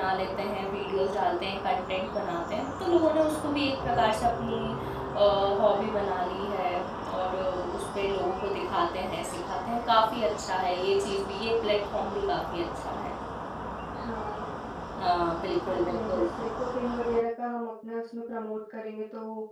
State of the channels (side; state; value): both; identical; correlation 1.00